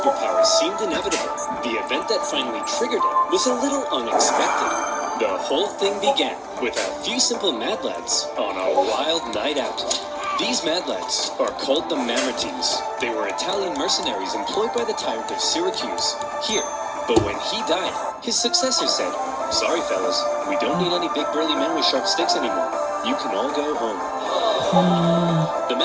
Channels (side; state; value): both; identical; correlation 1.00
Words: seemed inevitable, the event that finally triggered it was a little unexpected. The whole thing began with a few simple mad lads on a wild night out. These mad lads are called the Mamertines. They were Italian mercenaries employed by the tyrant of Syracuse here. But when he died, his successor said, "Sorry, fellas, we don't need any big burly men with sharp sticks anymore. You can all go home." The